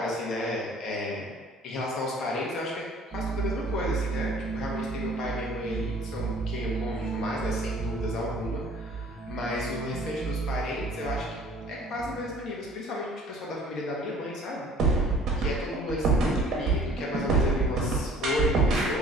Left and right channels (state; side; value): normal; both; correlation 0.52